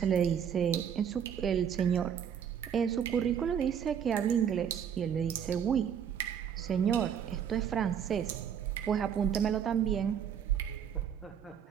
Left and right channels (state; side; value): quieter; left; 8.3 dB